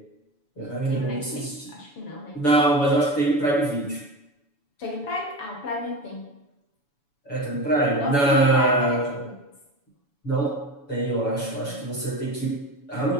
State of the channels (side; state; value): right; late; 7.0 ms